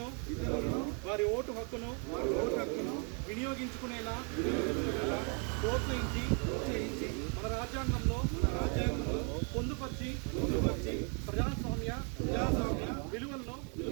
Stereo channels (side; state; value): left; quieter; 38.8 dB